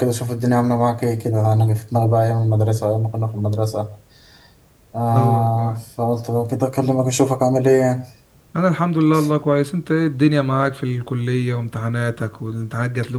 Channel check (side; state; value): both; identical; correlation 1.00